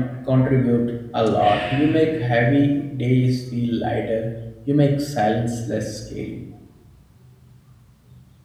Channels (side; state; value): both; identical; correlation 1.00